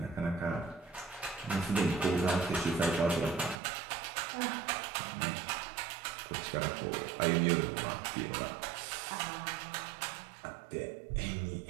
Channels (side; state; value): left; drops out; at 3.6 s